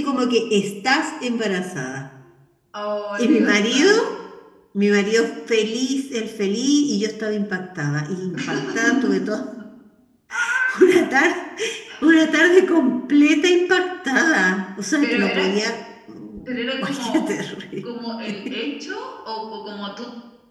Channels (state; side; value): identical; both; correlation 1.00